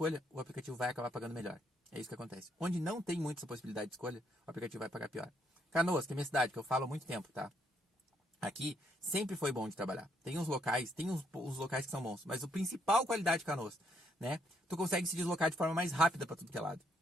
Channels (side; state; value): both; normal; correlation 0.72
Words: o aplicativo vai acabar pagando melhor. É isso que acontece. Onde não tem muita possibilidade de escolha, o aplicativo vai pagar pior. Canoas, que é minha cidade, que eu falo há muito tempo, tá? Aqui sempre foi bom de trabalhar. Tem uns locais que são bons, mas a principal qualidade de Canoas, né? Tu consegue se deslocar de forma mais rápida para tudo que é lado,